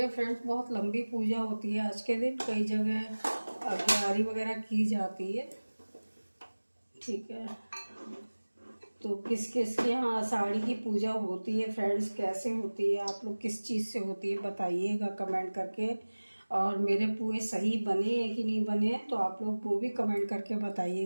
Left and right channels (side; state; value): both; inverted; correlation -1.00